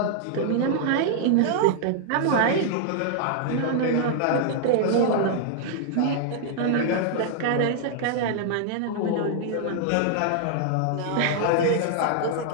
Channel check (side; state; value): both; different; correlation -0.01